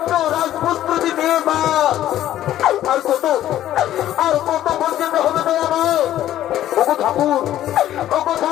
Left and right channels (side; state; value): right; quieter; 12.7 dB